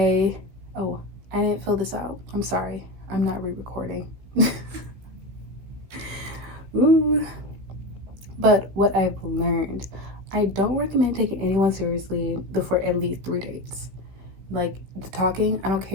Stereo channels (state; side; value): late; left; 16 ms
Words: didn't fill this out. I'm sorry. I'm not re-recording. Ooh. But what I've learned, I don't recommend taking anyone seriously before at least 3 dates. Like, the talking, I don't